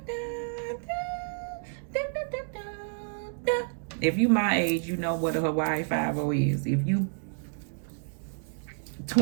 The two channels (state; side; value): silent; left; digital silence